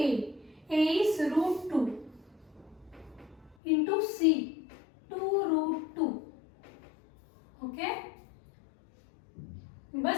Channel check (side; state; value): right; drops out; at 3.6 s